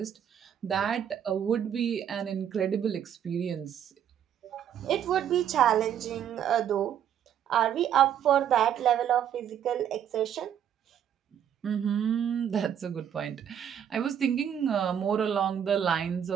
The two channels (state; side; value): quieter; left; 9.3 dB